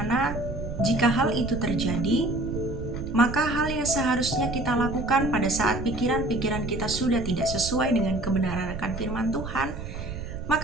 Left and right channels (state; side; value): noise; right; rumble, 8 dB below the sound